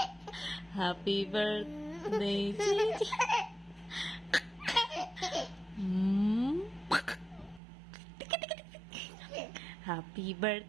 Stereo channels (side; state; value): left; drops out; at 7.6 s